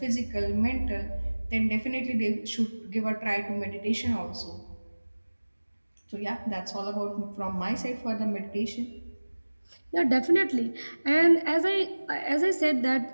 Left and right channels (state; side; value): inverted; both; correlation -1.00